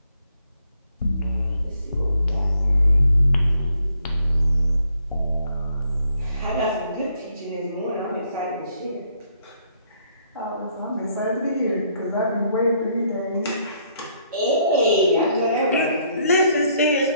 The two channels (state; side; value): inverted; both; correlation -0.69